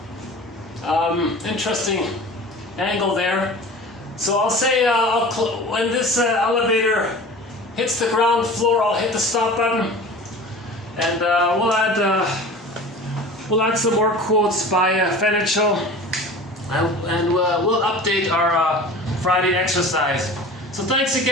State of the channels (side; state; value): both; normal; correlation 0.39